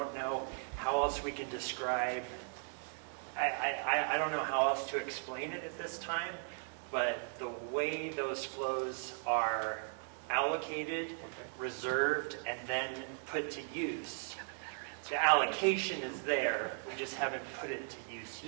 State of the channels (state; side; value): silent; left; 53 dB below the other